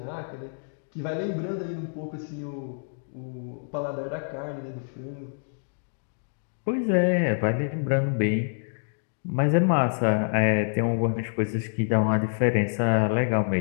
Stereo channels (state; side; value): silent; right; digital silence